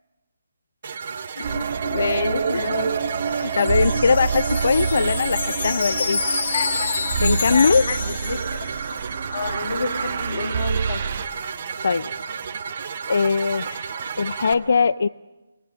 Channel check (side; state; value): both; inverted; correlation -0.83